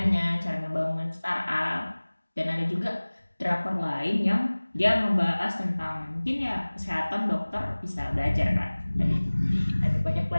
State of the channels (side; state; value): both; inverted; correlation -1.00